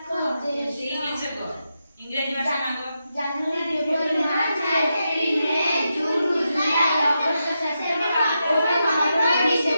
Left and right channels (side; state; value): both; inverted; correlation -0.86